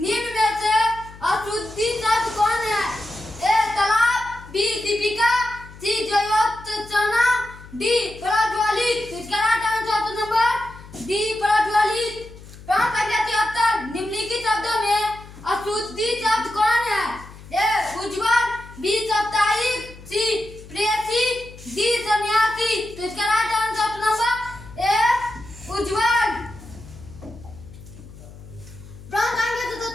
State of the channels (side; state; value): left; noise; hum, 18 dB below the sound